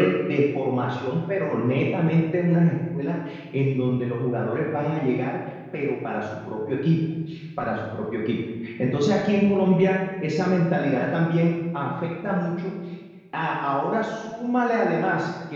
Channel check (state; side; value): identical; both; correlation 1.00